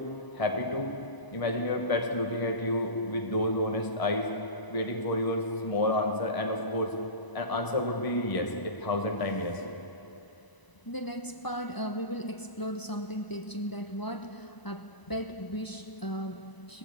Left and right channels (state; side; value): late; right; 1.0 ms